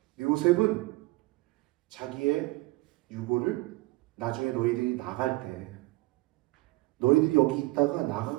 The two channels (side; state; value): left; quieter; 21.5 dB